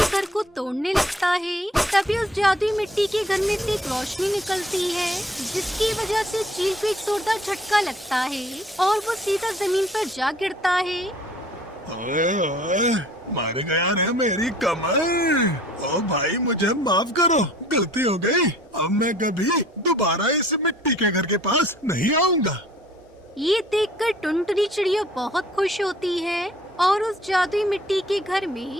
घर को तोड़ने लगता है। तभी उस जादुई मिट्टी के घर में से एक रोशनी निकलती है, जिसकी वजह से चील को एक जोरदार झटका लगता है और वो सीधा जमीन पर जा गिरता है। ओए ओए, मार गया रे मेरी कमर। ओ भाई, मुझे माफ करो, गलती हो गई। अब मैं कभी दोबारा इस मिट्टी के घर के पास नहीं आऊंगा। ये देखकर टुनटुनी चिड़िया बहुत खुश होती है और उस जादुई मिट्टी के घर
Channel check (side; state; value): both; normal; correlation 0.53